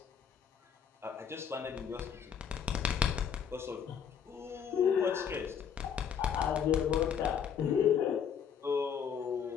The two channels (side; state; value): right; quieter; 7.7 dB